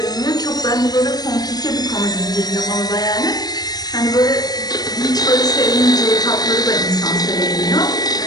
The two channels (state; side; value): late; right; 0.19 ms